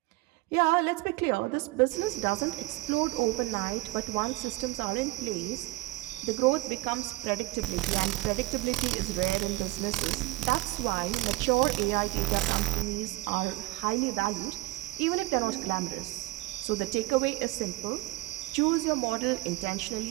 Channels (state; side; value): quieter; left; 19.3 dB